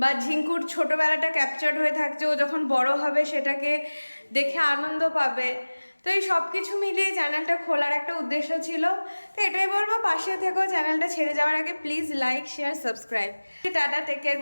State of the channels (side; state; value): both; inverted; correlation -1.00